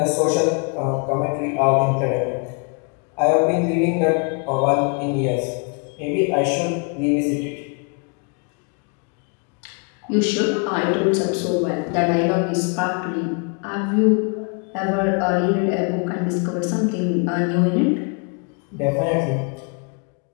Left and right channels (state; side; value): quieter; right; 37.3 dB